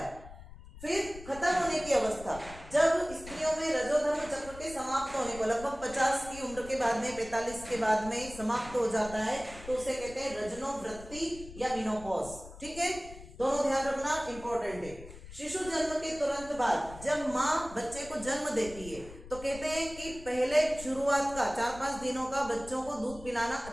फिर खत्म होने की अवस्था, जब स्त्रियों में रजोधर्म चक्र के समाप्त होने को लगभग 50 की उम्र के बाद में, 45 के बाद में समाप्त हो जाता है, तो उसे कहते हैं रजनोवृत्ति या मिनोपॉज। ठीक है, दोनों ध्यान रखना, इंपॉर्टेंट है। शिशु जन्म के तुरंत बाद जब माँ बच्चे को जन्म देती है, तो कहते हैं कि पहले शुरुआत का 4-5 दिनों का बच्चों को दूध पिलाना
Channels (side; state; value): left; noise; rumble, 16 dB below the sound